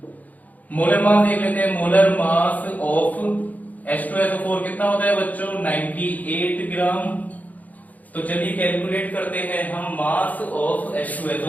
मोलर मास देख लेते हैं। मोलर मास ऑफ H2SO4 कितना होता है बच्चों, 98 ग्राम। तो चलिए कैलकुलेट करते हैं हम मास ऑफ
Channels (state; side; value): late; right; 0.078 ms